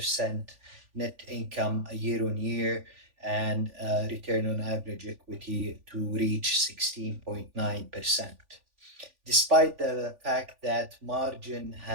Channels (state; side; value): late; left; 3.5 ms